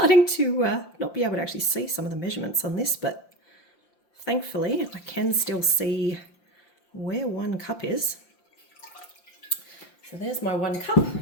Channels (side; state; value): right; late; 5.8 ms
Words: to not be able to actually see some of the measurements on this, but thankfully I can still see where 1 cup is. So there's my 1 cup,